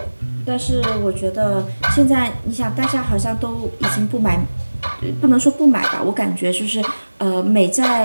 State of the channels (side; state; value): both; inverted; correlation -1.00